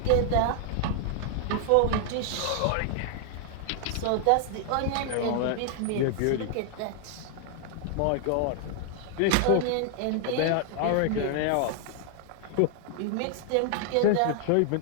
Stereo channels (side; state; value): both; different; correlation 0.00